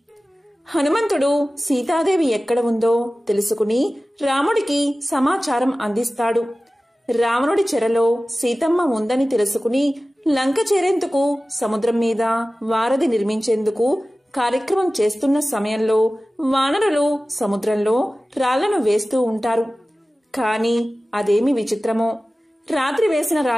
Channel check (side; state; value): both; normal; correlation 0.96